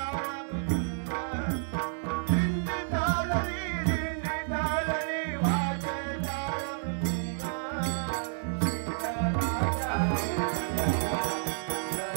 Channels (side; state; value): left; silent; digital silence